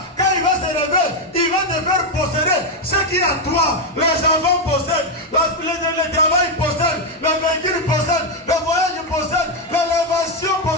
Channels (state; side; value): normal; both; correlation 0.04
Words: Quand il va se lever, il va te faire posséder ce qui est à toi. Les enfants possèdent, le travail possède, le véhicule possède, le voyage possède, l'élévation